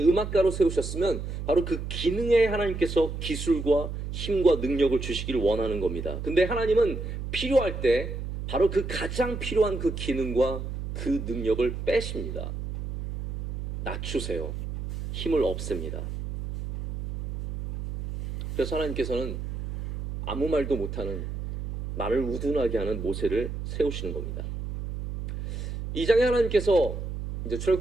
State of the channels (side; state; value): right; noise; hum, 6 dB below the sound